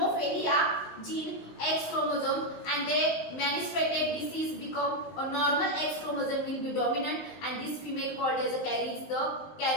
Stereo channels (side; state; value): right; late; 19 ms